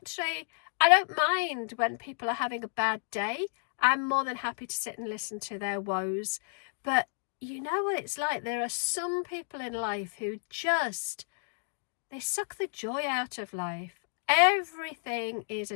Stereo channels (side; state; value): right; silent; digital silence